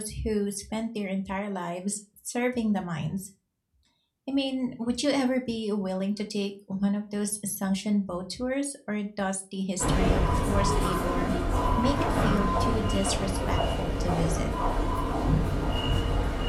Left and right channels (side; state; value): both; identical; correlation 1.00